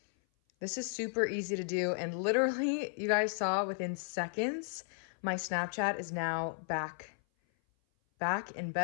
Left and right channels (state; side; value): silent; right; 55 dB below the other